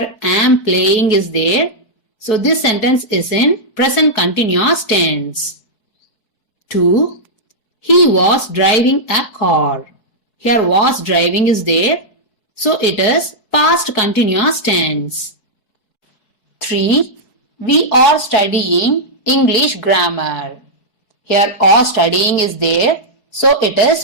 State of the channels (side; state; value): right; late; 4.7 ms